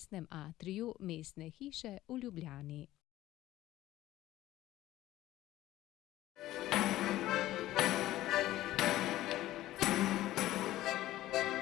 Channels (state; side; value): quieter; right; 15.2 dB